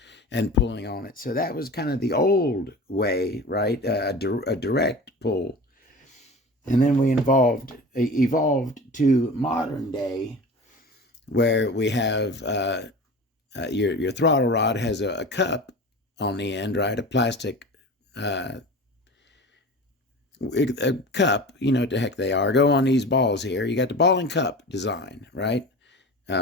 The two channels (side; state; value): both; normal; correlation 0.35